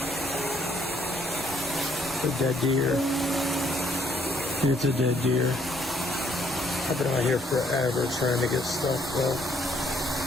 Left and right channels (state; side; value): normal; both; correlation 0.67